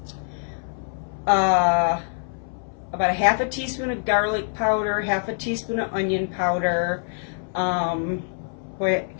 about a half a teaspoon of garlic powder, half a teaspoon of onion powder. Boy,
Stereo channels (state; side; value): silent; right; 62 dB below the other